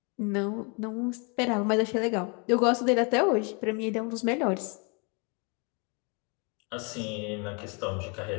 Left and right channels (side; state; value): right; quieter; 33.6 dB